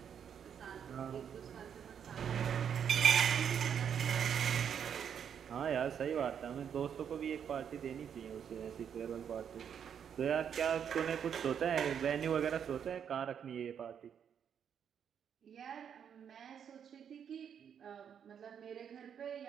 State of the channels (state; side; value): quieter; left; 8.1 dB